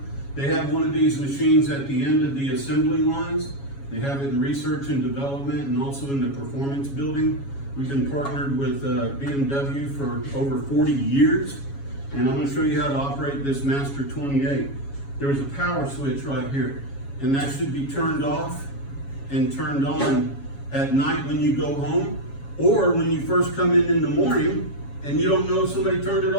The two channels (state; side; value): late; right; 7.2 ms